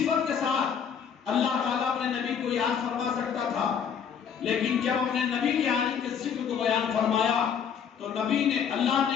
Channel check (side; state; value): right; quieter; 7.4 dB